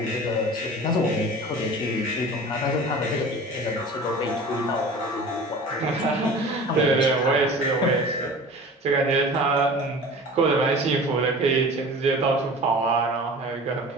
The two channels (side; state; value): both; normal; correlation 0.40